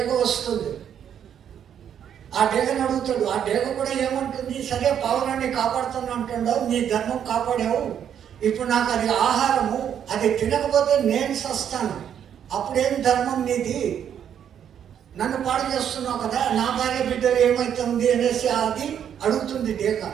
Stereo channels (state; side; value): quieter; left; 9.0 dB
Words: వస్తుంది. ఆ డేగను అడుగుతాడు. ఆ డేగ కూడా ఏమంటుంది? సరే, పావురాన్ని కాపాడుతాను అంటున్నావు, నీ ధర్మం కాపాడావు, ఇప్పుడు నాకు అది ఆహారము, అది తినకపోతే నేను సస్తాను, అప్పుడేం ధర్మం నీది? నన్ను పాడు చేస్తున్నావు కదా, నా భార్య బిడ్డలు ఏమవుతుంది అనేసి అది అడుగుతుంది డేగ.